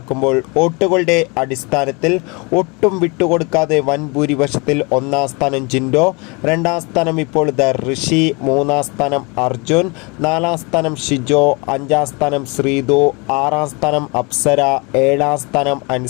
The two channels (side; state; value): right; quieter; 29.4 dB